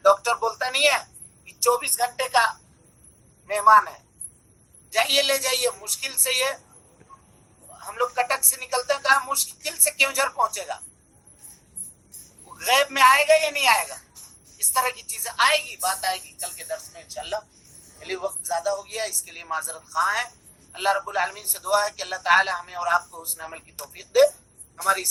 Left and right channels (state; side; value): identical; both; correlation 1.00